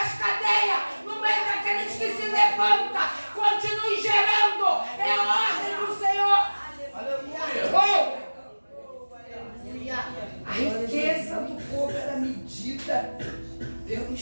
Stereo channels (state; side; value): inverted; both; correlation -1.00